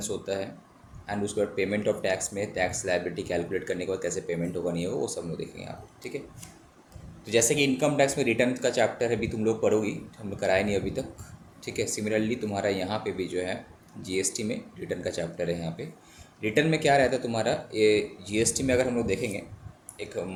होता है एंड उसके बाद पेमेंट ऑफ टैक्स में टैक्स लायबिलिटी कैलकुलेट करने के बाद कैसे पेमेंट होगा नहीं होगा वो सब लोग देखेंगे आप। ठीक है। तो जैसे कि इनकम टैक्स में रिटर्न का चैप्टर है, अभी तुम लोग पढ़ोगी, हम लोग कराए नहीं अभी तक। ठीक है। सिमिलरली तुम्हारा यहाँ पे भी जो है जीएसटी में रिटर्न का चैप्टर है। यहाँ पे रिटर्न में क्या रहता है तुम्हारा, ये जीएसटी में अगर हम लोग देखेंगे एक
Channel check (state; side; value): identical; both; correlation 1.00